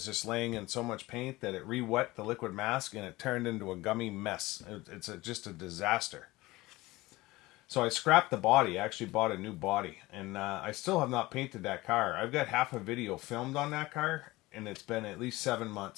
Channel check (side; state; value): right; quieter; 19.7 dB